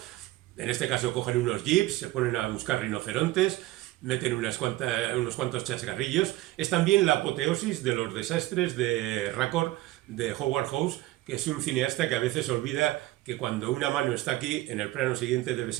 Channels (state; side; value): quieter; left; 17.1 dB